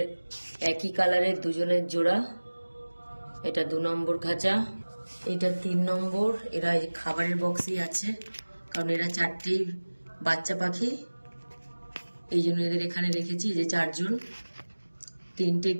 একই কালারের দুজনের জোড়া, এটা 2 নম্বর খাঁচা। এটা 3 নম্বর। এরা এই খাবারের বক্সই আছে, কারণ এরা 4টি বাচ্চা পাখি, এই জন্য এদের এখানে রেখেছি। যে 4 জন, 3টে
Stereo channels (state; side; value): inverted; both; correlation -1.00